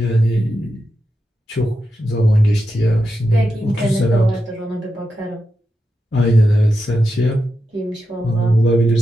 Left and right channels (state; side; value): normal; both; correlation 0.88